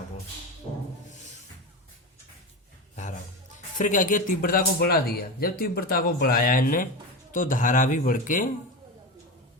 को, धारा। फिर क्या किया, तीव्रता को बढ़ा दिया। जब तीव्रता को बढ़ाया इनने तो धारा भी बढ़ के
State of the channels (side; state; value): both; normal; correlation 0.21